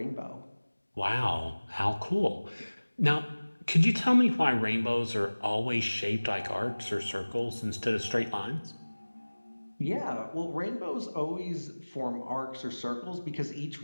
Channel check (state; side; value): inverted; both; correlation -1.00